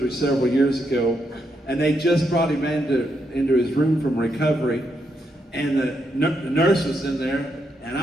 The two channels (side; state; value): both; normal; correlation 0.80